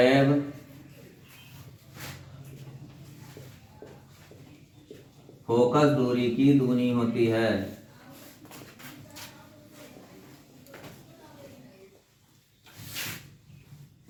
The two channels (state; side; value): identical; both; correlation 1.00